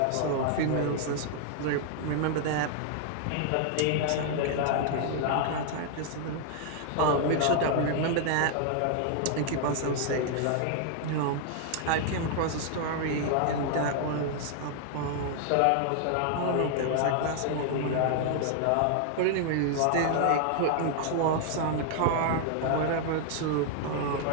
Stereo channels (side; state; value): both; different; correlation 0.00